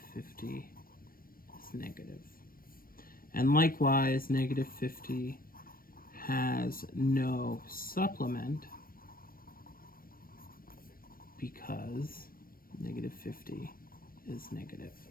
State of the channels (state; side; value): late; right; 0.42 ms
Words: 50 is negative. And likewise, negative 50 has no supplement because negative 50 is negative.